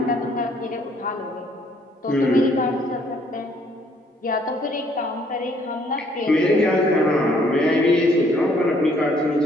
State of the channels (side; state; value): both; normal; correlation 0.64